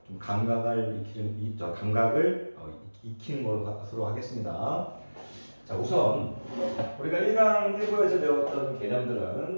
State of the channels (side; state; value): both; inverted; correlation -1.00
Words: 좀 감각을 익히는 것으로 하겠습니다. 자, 우선 우리가 1강 1부에서 배웠던